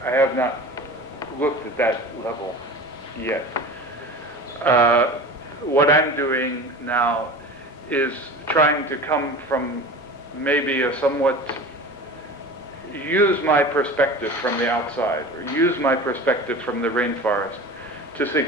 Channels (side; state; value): right; noise; rumble, 30 dB below the sound